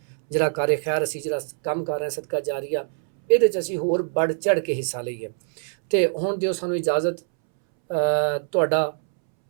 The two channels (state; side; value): silent; left; 63 dB below the other